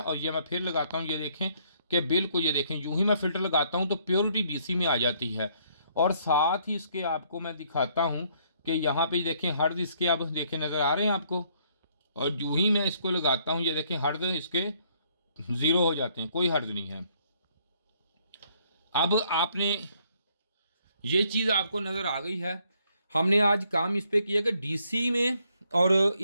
और ये मैं फिर लगाता हूँ। ये देखें कि बिल्कुल ये देखें यूं ही मैं फ़िल्टर लगाता हूँ तो प्योरिटी DC में आ जाती है। और साथ ही इसके आपको मैं दिखाता हूँ कि यहाँ पे देखें हर्ट्ज इसके अब देखें नज़र आ रहे हैं आपको। और यूं ही मैं इसको लगाता हूँ, ये देखें हर्ट्ज इसके 0 हो जाते हैं, कोई हर्ट्ज नहीं है। अब आपने ये चीज़ आपको नज़र आ गई है। हमने आज काम इस पे किया कि DC में और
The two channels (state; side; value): inverted; both; correlation -0.68